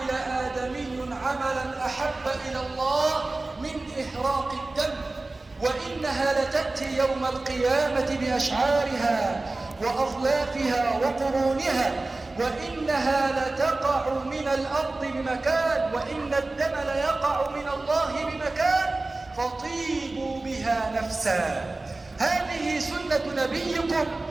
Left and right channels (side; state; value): left; quieter; 3.1 dB